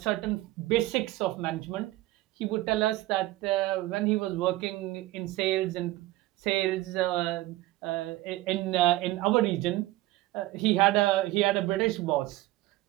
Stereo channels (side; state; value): left; quieter; 17.4 dB